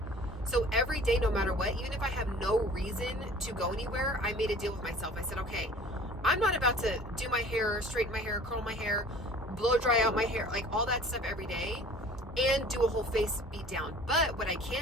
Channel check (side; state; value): both; normal; correlation 0.47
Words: So every day, no matter what, even if I have no reason to go anywhere, I made a deal with myself. I said, okay, I'm not about to do my hair, straighten my hair, curl my hair, blow dry out my hair, like all that stuff every day, and do a whole face beat down. But what I